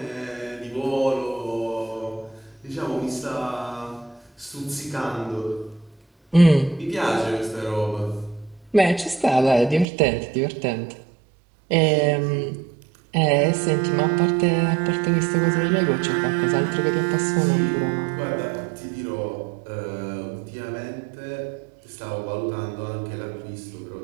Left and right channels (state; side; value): drops out; left; at 9.9 s